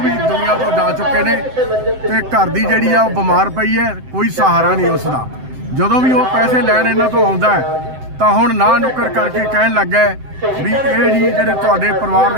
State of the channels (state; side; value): late; left; 7.7 ms